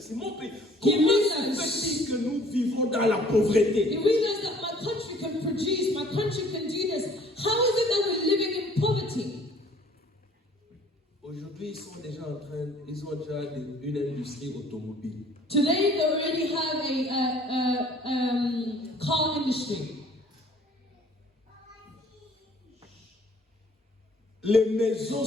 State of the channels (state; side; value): normal; both; correlation 0.55